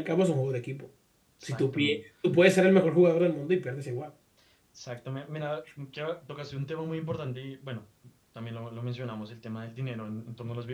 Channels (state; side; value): identical; both; correlation 1.00